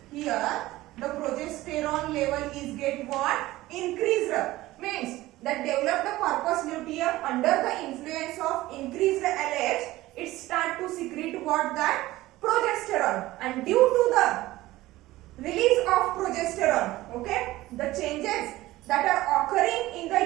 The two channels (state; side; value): quieter; left; 17.3 dB